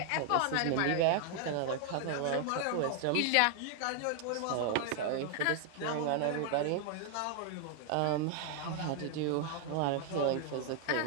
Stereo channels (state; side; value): different; both; correlation 0.00